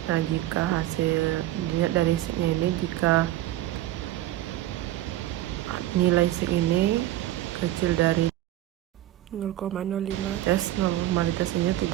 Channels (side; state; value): left; quieter; 14.4 dB